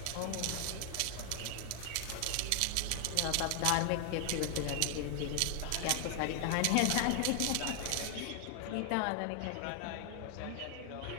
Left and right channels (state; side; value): different; both; correlation 0.00